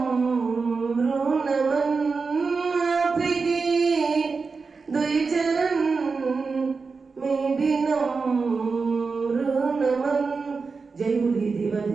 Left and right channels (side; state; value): left; quieter; 4.6 dB